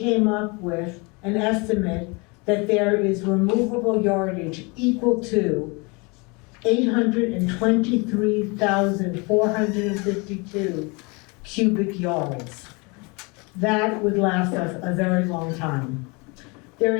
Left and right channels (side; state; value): right; quieter; 29.0 dB